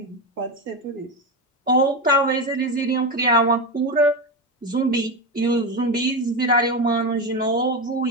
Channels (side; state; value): both; normal; correlation 0.15